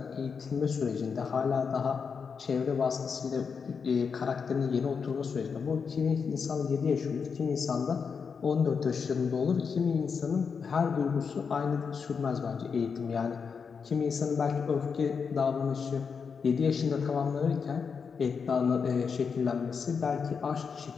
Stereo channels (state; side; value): quieter; right; 5.9 dB